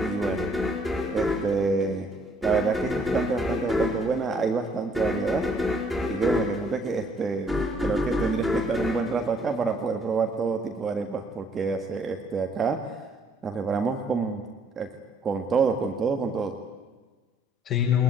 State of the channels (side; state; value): both; normal; correlation 0.64